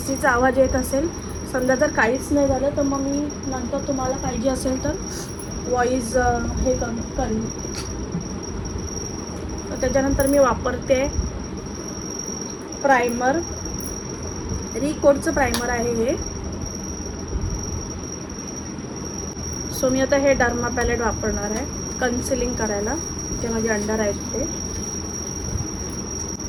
आवाज येत असेल, समजा जर काहीच नाही झालं तर मग मी नंतर तुम्हाला पाहिजे असेल तर व्हॉइस हे करेन. तर त्याच्यानंतर मी वापरते प्रायमर, रिकोडचं प्रायमर आहे हे. सो मी आता हे डर्मा पॅलेट वापरणार आहे कन्सिलिंग करायला, जे माझे अंडर आहेत ते.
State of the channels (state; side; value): identical; both; correlation 1.00